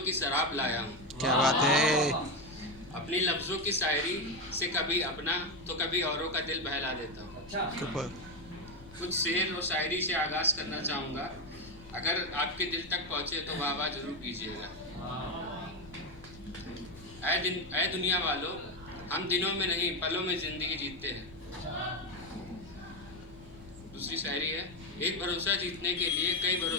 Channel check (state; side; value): noise; left; rumble, 19 dB below the sound